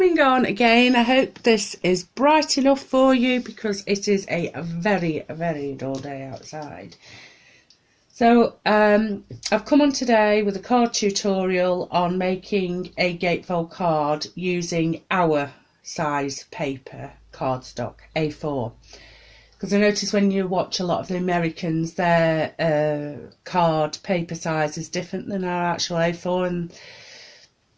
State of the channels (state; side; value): identical; both; correlation 1.00